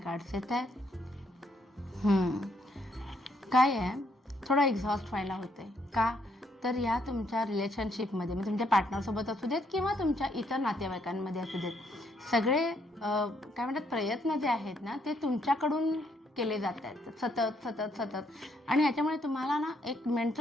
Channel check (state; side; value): normal; both; correlation 0.72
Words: येत आहेत. काय आहे, थोडं एक्झॉस्ट व्हायला होते का तर या तुमच्या रिलेशनशिपमध्ये म्हणजे तुमच्या पार्टनरसोबत असू देत किंवा तुमच्या इतर नातेवाईकांमध्ये असू देत, सगळे काय म्हणतात प्रयत्न जे आहेत ना ते तुमच्याकडून केले जात आहेत सतत सतत सतत आणि ह्याच्यामुळे तुम्हाला ना एक